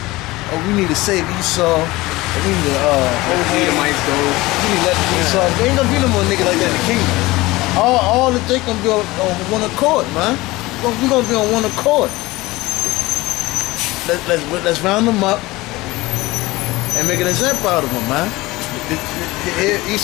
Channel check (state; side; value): quieter; right; 20.1 dB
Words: Oh, we need to save Esau. We need to Edomites go. We need to let Esau. There ain't gonna be no more niggas like that in the kingdom. All the they gonna be on one accord, man. We gonna be on one accord. Let's round them up and make an example out of them, man.